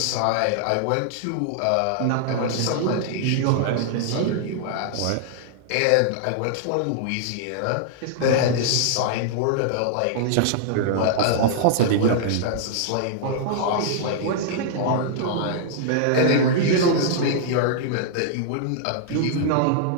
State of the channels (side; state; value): both; different; correlation -0.01